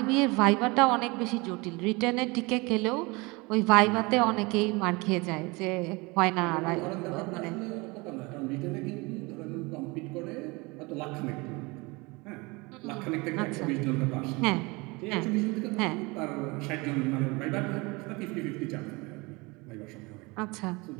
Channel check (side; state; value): left; quieter; 25.6 dB